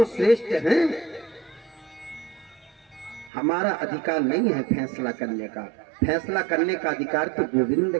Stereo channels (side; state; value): left; drops out; at 3.3 s